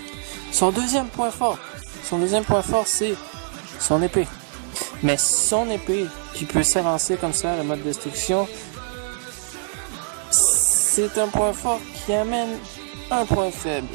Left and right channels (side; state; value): left; silent; digital silence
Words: Son deuxième point fort, c'est son épée. Mais son épée, qui peut s'avancer comme ça, le mode destruction, c'est un point fort qui amène un point faible.